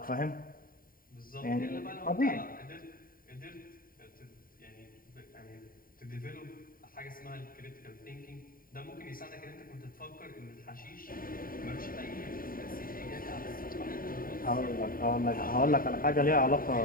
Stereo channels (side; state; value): right; late; 0.41 ms